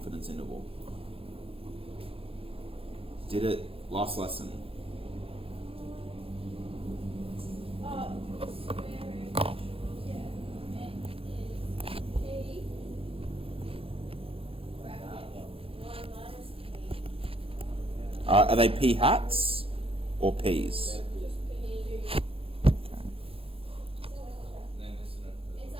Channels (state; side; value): late; left; 0.27 ms